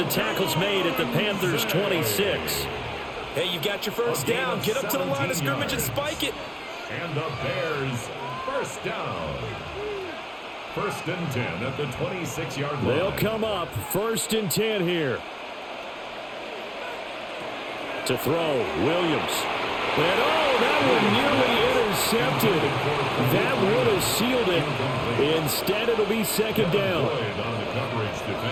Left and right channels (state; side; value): identical; both; correlation 1.00